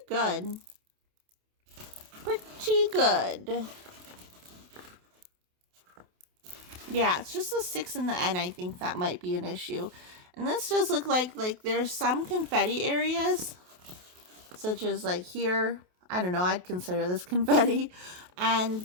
good. Pretty good. Yeah, it's just the 6 and the N, I think that might be an issue. And this does look like there's some confetti areas, such as like here. I don't know, I'd consider this confetti. And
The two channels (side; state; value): left; late; 28 ms